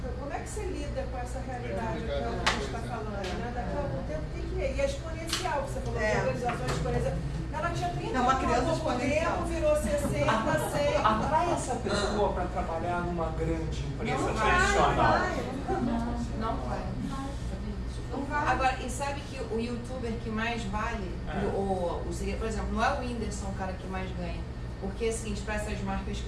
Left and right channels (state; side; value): identical; both; correlation 1.00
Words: como é que você lida com essa realidade que a gente está falando? Né? Daqui a algum tempo tem que ir. E é exponencial, você falou de organizações exponenciais. Ela tinha 30 anos, há pouco tempo, virou 60, 100. Atrai essa pessoa para trabalhar numa grande empresa tradicional. Não vai. Agora, e sabe que o youtuber que mais vale, por exemplo, não é o Whindersson o cara que mais ganha. Porque, assim, para essas marcas